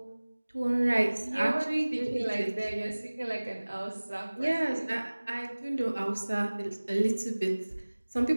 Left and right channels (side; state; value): both; inverted; correlation -1.00